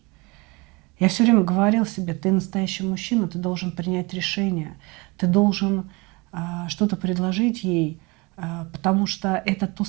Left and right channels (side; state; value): left; quieter; 26.2 dB